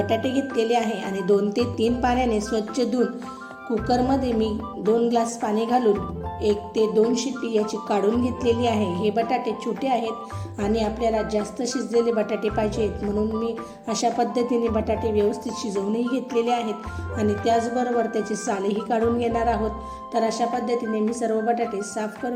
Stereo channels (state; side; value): identical; both; correlation 1.00